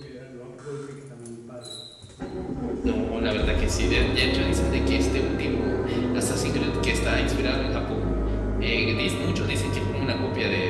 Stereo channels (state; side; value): identical; both; correlation 1.00